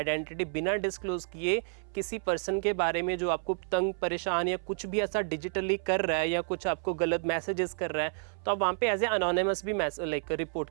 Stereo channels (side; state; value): left; silent; 58 dB below the other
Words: बिना डिस्क्लोज किए किसी पर्सन के बारे में जो आपको तंग परेशान या कुछ भी ऐसा डिजिटली कर रहा है या कुछ आपको गलत मैसेजेस कर रहा है, तो आप वहाँ पे एज ए अनोनिमस भी लाइक रिपोर्ट